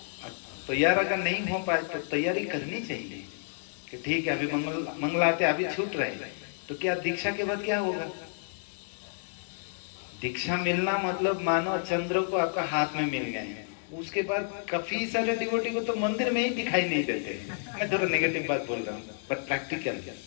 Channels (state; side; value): silent; right; digital silence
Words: तैयार अगर नहीं हो पाए तो तैयारी करनी चाहिए कि ठीक है अभी मंगलाते अभी छूट रहे, तो क्या दीक्षा के बाद क्या होगा? दीक्षा मिलना मतलब मानो चंद्र को आपका हाथ में मिल गए हैं। उसके बाद काफी सारे डिवोटी को तो मंदिर में ही दिखाई नहीं देते। मैं थोड़ा नेगेटिव बात बोल रहा हूँ, बट प्रैक्टिकल